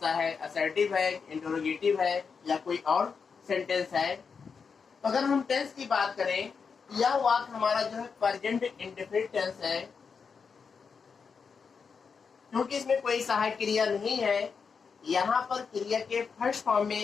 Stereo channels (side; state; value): right; quieter; 5.7 dB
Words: है, असर्टिव है, इंटरोगेटिव है या कोई और सेंटेंस है। तो अगर हम टेंस की बात करें, यह वाक्य हमारा जो है प्रेजेंट इंडेफिनिट टेंस है। क्योंकि इसमें कोई सहायक क्रिया नहीं है, यहाँ पर क्रिया के फर्स्ट फॉर्म